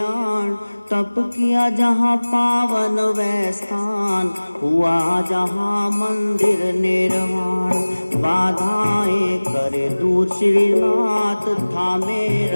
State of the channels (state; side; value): inverted; both; correlation -1.00